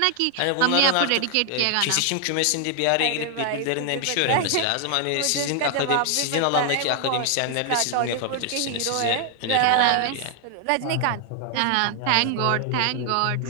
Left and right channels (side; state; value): both; different; correlation 0.00